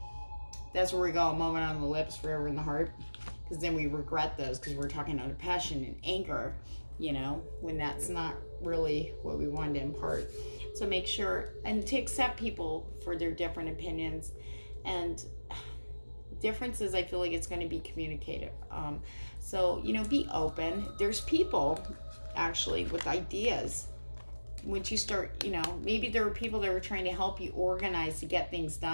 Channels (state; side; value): inverted; both; correlation -1.00